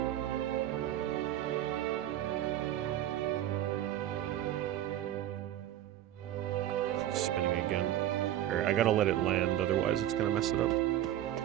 It's spinning again. I gotta let it land, otherwise it's gonna mess it up.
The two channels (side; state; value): left; quieter; 12.6 dB